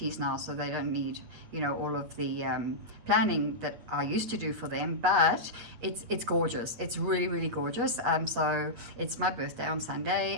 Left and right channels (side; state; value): left; late; 8.4 ms